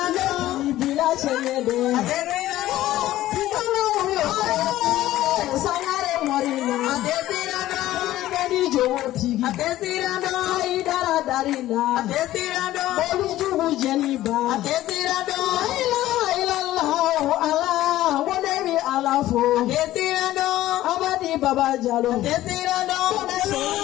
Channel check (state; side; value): quieter; right; 14.8 dB